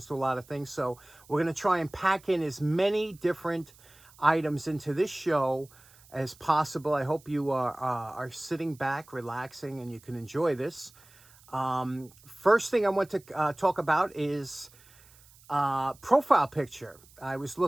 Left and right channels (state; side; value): noise; right; hiss, 26 dB below the sound